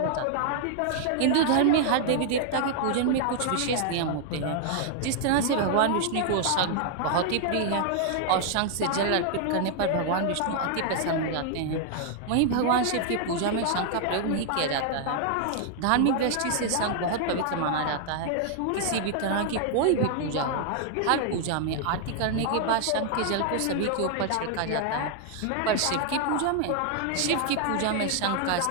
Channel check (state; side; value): different; both; correlation 0.00